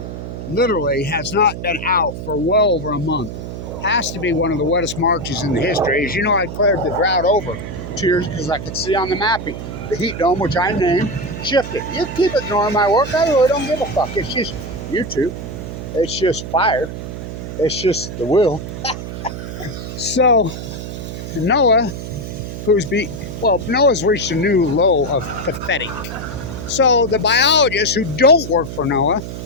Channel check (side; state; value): right; noise; hum, 8 dB below the sound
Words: Literally has not been out for well over a month. Has to be one of the wettest Marches in the history. As you know, I cleared the drought over 2 years because I could see on the mapping the heat dome, which I named, shifted. You keep ignoring my work. I really don't give a fuck. It's just YouTube. It's just fire. It's just the will. So NOAA, NOAA's reached a new low of pathetic. So the biologists who don't work for NOAA